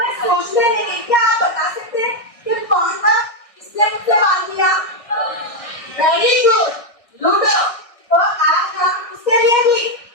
सोचने लगी, क्या आप बता सकते हैं कि कौन था इसने मुझसे बात किया? Very good, ludo. तो आज हम उसके लिए भी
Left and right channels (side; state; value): right; late; 1.6 ms